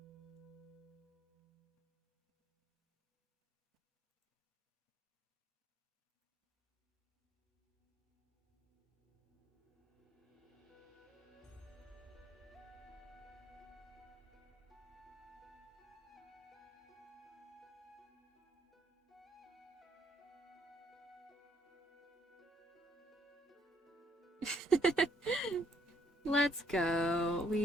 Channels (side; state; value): both; normal; correlation 0.68